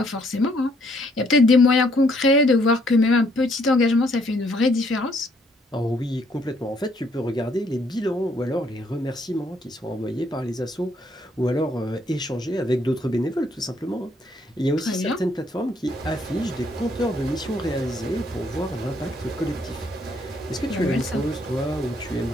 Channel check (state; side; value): normal; both; correlation 0.68